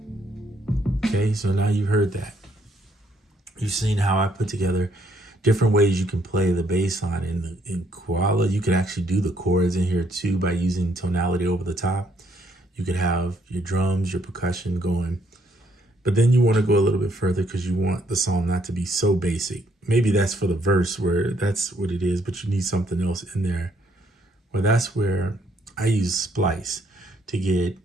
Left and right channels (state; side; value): normal; both; correlation 0.70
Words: Okay, so now you've heard that. You've seen how I put together different ways you can play the bass line. In Koala, you can actually do the chords in here too by using tonality over the top. You could have your drums, your percussion going. But then you want to go a little bit further because you want the song not to be so basic. Maybe that's for the verse where that's what it is, but you need something else in there. Well, that's where I use Splice to get